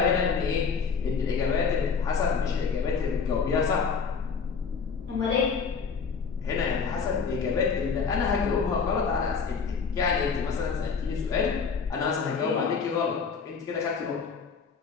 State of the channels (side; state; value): right; quieter; 5.6 dB